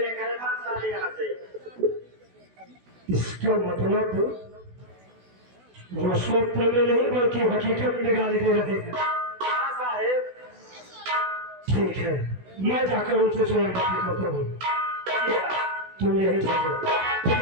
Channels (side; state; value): left; late; 16 ms